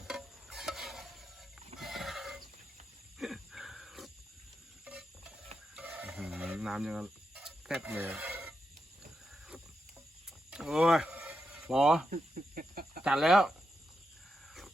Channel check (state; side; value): normal; both; correlation 0.86